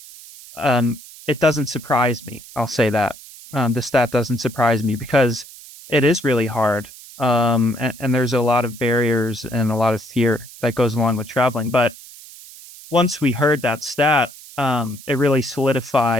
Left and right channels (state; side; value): noise; right; hiss, 18 dB below the sound